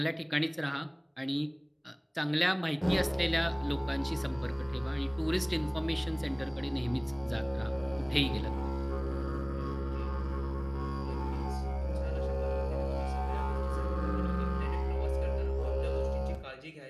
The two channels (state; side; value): identical; both; correlation 1.00